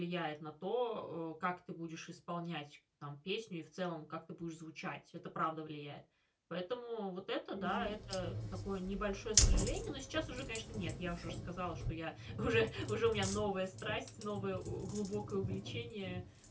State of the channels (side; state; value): both; identical; correlation 1.00